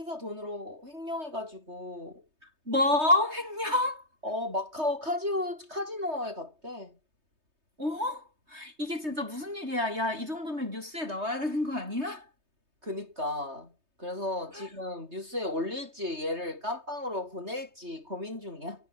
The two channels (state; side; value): late; left; 3.2 ms